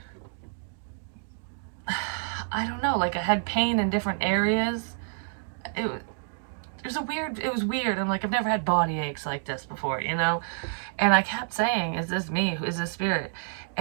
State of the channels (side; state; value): left; silent; digital silence